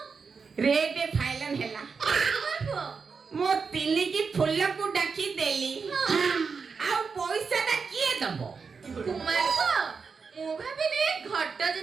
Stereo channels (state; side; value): quieter; left; 5.3 dB